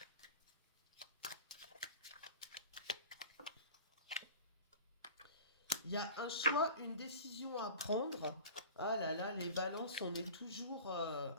Il y a un choix, une décision à prendre. Ah là là, les balances, on est toujours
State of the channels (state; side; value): inverted; both; correlation -0.38